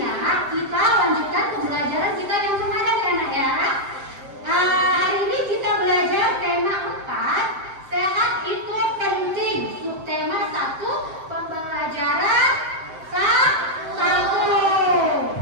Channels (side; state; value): left; late; 7.7 ms